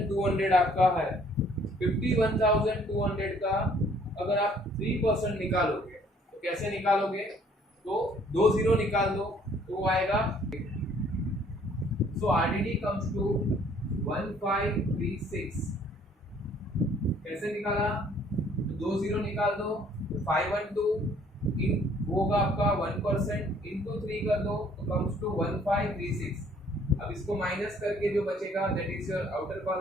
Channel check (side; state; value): both; normal; correlation 0.60